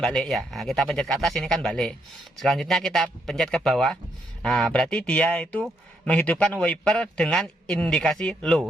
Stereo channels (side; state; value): both; normal; correlation 0.76